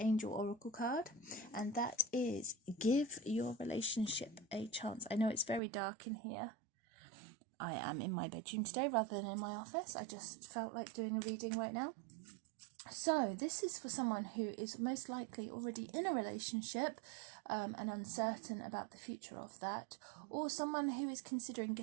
Oracle card, and that is Give Your Relationship a Chance. I know it's very dark in here. I am in my bedroom today rather than in my office. I just felt like doing a reading right now. So this is for someone who is most likely already in a relationship and uncertain about the future of that, or someone who is considering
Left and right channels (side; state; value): left; drops out; at 5.6 s